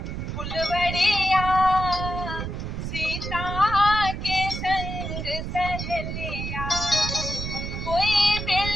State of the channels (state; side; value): noise; right; rumble, 5 dB below the sound